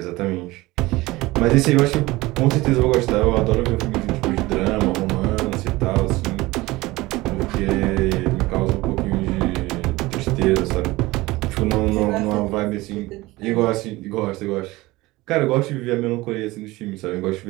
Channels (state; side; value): quieter; left; 20.0 dB